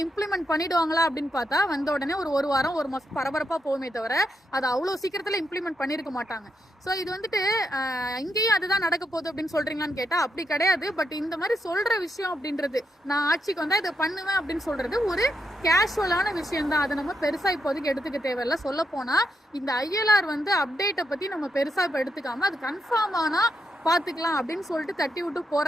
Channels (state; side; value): normal; both; correlation 0.81